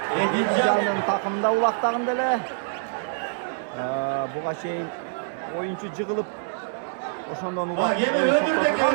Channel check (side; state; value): left; silent; 62 dB below the other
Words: Edilcan'ın takımında ulaqtağın dele. Buğa şeyin oyuncu jığılıp oşondan ulaq oyun toktotulgan.